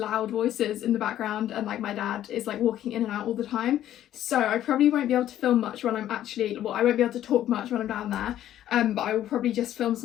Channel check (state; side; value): quieter; right; 12.0 dB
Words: voices in the background, and like my dad is like walking in and out all the time. So I probably won't be able to film much when I'm I won't be able to talk much when I'm down there. But I will probably just film